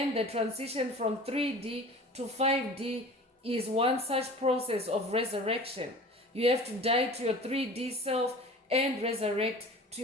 the transition from 3D to 5D is one such process of resurrection. You have to die to your 3D self and resurrect to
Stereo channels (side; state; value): both; normal; correlation 0.41